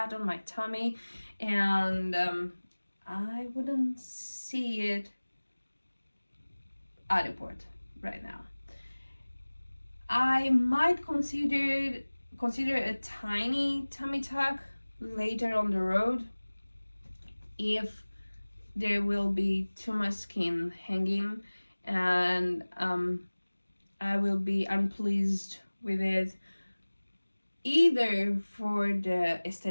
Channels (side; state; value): both; inverted; correlation -1.00